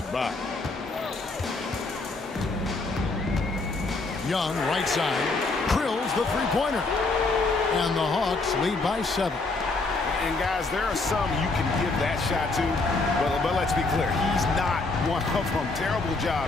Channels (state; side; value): quieter; right; 3.5 dB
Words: Young, right side, drills the three-pointer. And the Hawks lead by 7. And guys, there are some you can give that shot to, but let's be clear, he's not one of them. Terrible